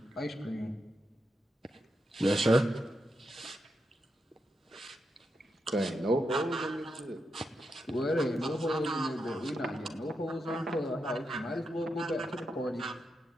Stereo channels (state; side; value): normal; both; correlation 0.85